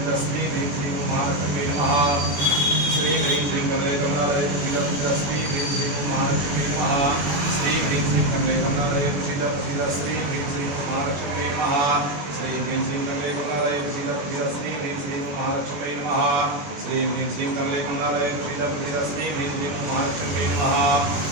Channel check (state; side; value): late; left; 21 ms